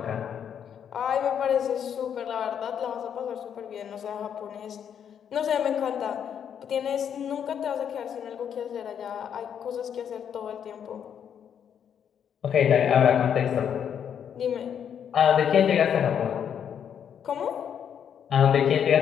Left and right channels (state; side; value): quieter; right; 8.4 dB